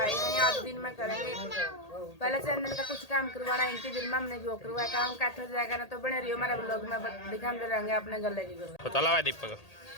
है आज दिन में करेंगे पहले चैनल का कुछ काम करवाना इनकी दिन में हमने जो करवाया काम काठल जाएगा ना तो बने रही हमारे ब्लॉग में दिखाते रहेंगे अपने गले की तो चला हुआ दीपक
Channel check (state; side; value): late; right; 1.8 ms